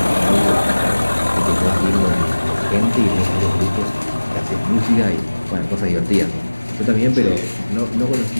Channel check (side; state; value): both; inverted; correlation -1.00